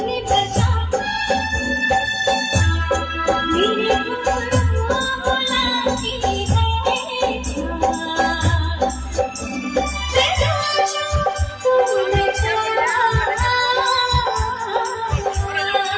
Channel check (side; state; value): both; identical; correlation 1.00